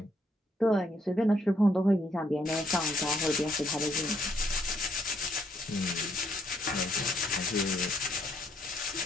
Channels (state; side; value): normal; both; correlation 0.71